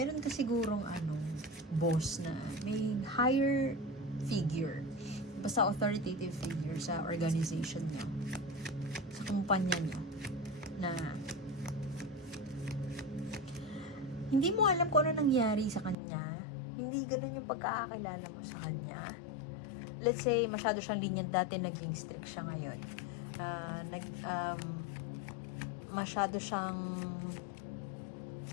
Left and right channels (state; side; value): drops out; right; at 16.0 s